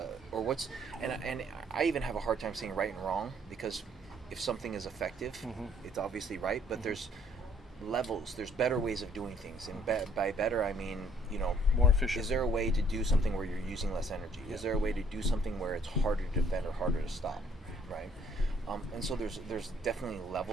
I even have a hard time saying right and wrong, because if something is effective, it's obviously right, but there's levels, there's better ways of doing things, and by better I mean More efficient. is there a way to do something where you're using less energy? Is there a way to do something where it's harder to defend or harder to stop, right? And so there's definitely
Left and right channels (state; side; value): normal; both; correlation 0.63